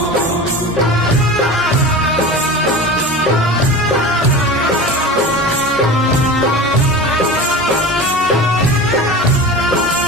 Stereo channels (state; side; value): normal; both; correlation 0.32